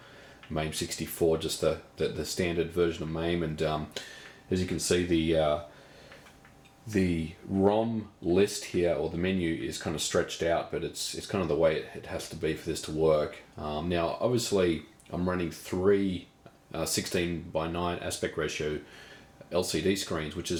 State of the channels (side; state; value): both; identical; correlation 1.00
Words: 64, just the standard version of MAME. And as you can see, the ROM list here, or the menu, is kind of stretched out, but it's kind of the way it has to be for this to work. Now, obviously, I'm running 3 16:9 aspect ratio LCD screens, which